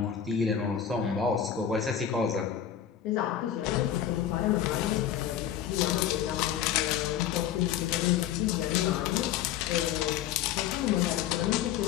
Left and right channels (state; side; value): quieter; right; 9.8 dB